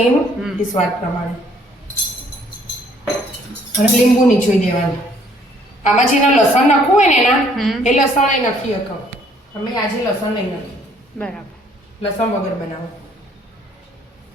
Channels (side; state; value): both; normal; correlation 0.62